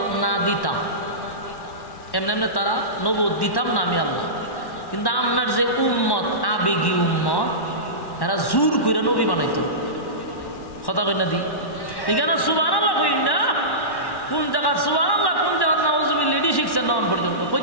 না দিতাম, এমনি এমনি তারা নবুয়ত দিতাম না আমি আল্লাহ, কিন্তু আপনার যে উম্মত, আবেগী উম্মত, এরা জোর করে নবী বানাইতো। কথা কই না দি, এখানে সুবহানাল্লাহ কই না, কোন জায়গা সুবহানাল্লাহ, কোন জায়গা নাউজুবিল্লাহ, এডি শিখছেন না পর্যন্ত,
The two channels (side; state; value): right; late; 1.1 ms